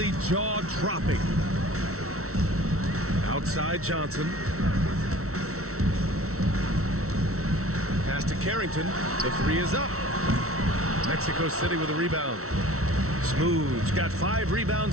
jaw-dropping. Outside Johnson. Pass to Carrington. The 3 is up. Mexico City with a rebound. Smooth's got 5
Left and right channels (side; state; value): left; late; 0.63 ms